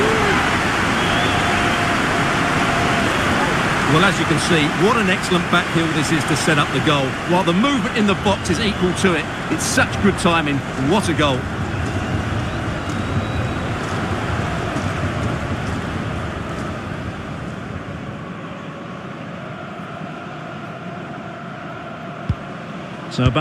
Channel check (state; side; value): identical; both; correlation 1.00